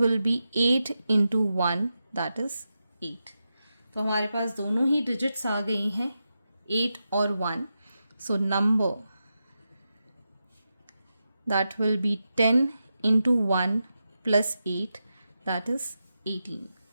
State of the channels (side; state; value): both; inverted; correlation -0.89